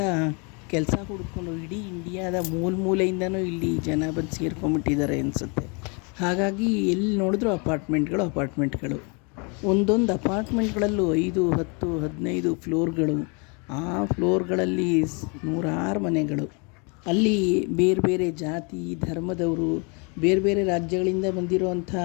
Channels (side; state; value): right; quieter; 33.4 dB